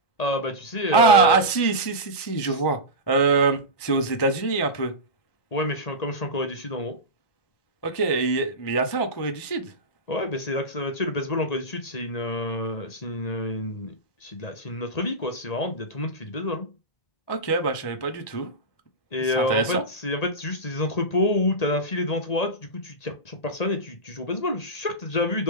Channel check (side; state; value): right; late; 1.2 ms